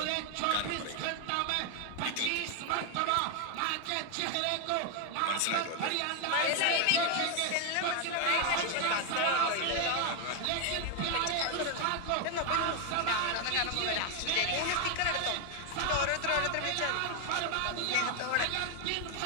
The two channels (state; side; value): different; both; correlation 0.01